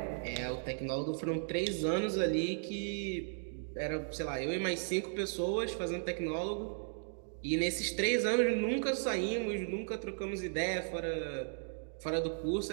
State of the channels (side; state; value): left; silent; digital silence